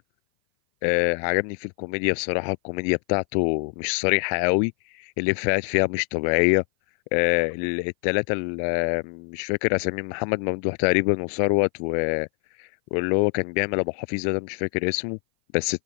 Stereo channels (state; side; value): silent; right; 57 dB below the other